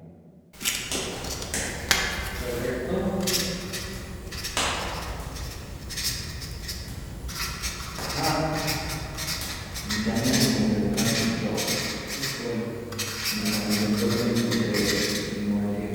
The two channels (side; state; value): both; identical; correlation 1.00